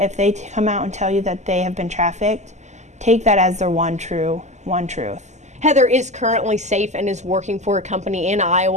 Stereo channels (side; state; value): left; late; 0.33 ms